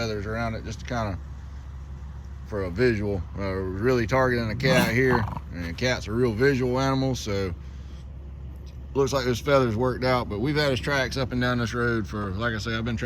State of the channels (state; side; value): identical; both; correlation 1.00